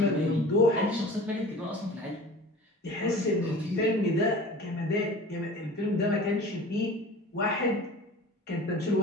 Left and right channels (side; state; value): both; normal; correlation 0.40